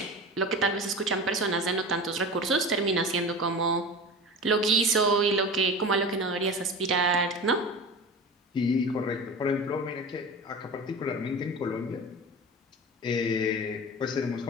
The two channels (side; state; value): both; normal; correlation 0.32